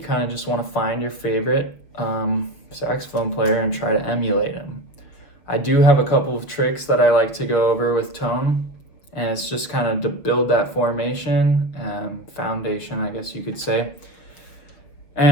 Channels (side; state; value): right; late; 6.3 ms